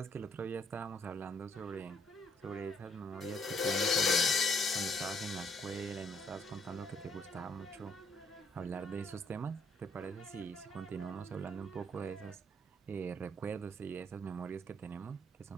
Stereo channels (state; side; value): normal; both; correlation 0.70